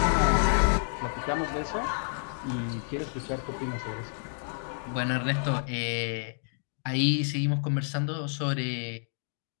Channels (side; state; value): right; silent; digital silence